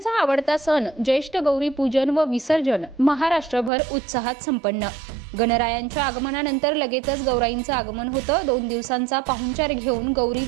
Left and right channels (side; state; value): left; drops out; at 3.7 s